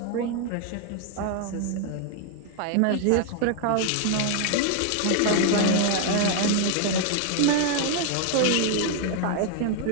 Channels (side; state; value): both; different; correlation 0.00